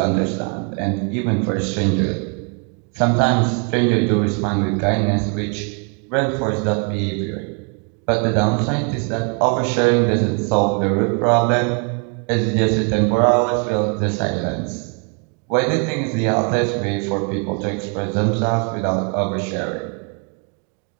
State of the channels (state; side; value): quieter; left; 39.0 dB